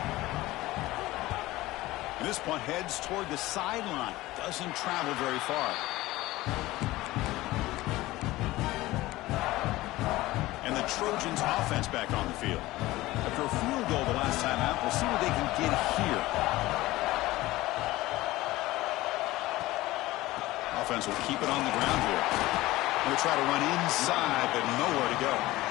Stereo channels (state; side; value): quieter; right; 18.1 dB